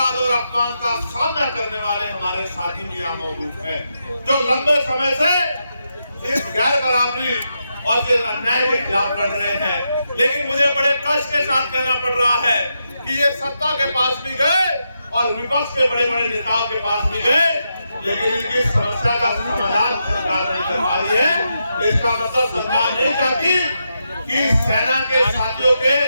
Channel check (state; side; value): inverted; both; correlation -0.84